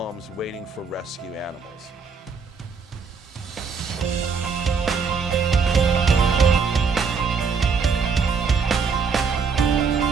waiting for rescue animals.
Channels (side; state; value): left; quieter; 5.4 dB